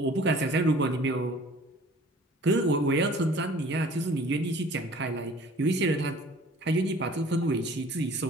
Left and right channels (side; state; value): both; normal; correlation 0.50